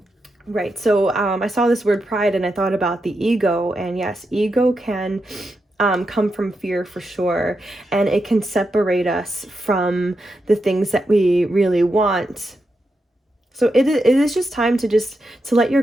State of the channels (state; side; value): normal; both; correlation 0.86